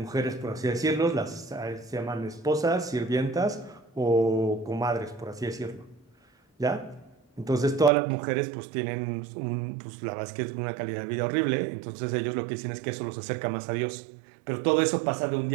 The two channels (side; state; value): left; drops out; at 7.9 s